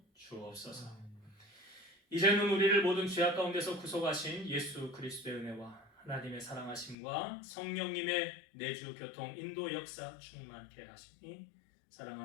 주옵소서. 이제는 우리를 모든 죄악 가운데서 구속하신 예수 그리스도의 은혜와 하나님의 사랑하심과 성령님의 내주 교통 인도 역사 충만케 하시니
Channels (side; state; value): right; drops out; at 7.0 s